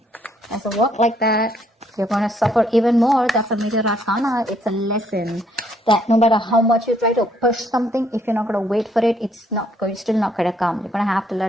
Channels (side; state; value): both; normal; correlation 0.69